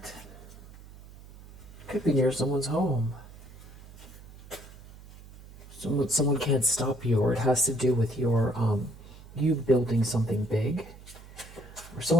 Could be near someone's home. Someone can't stop you, or it has to do with your you building something big. Or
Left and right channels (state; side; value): noise; right; hum, 19 dB below the sound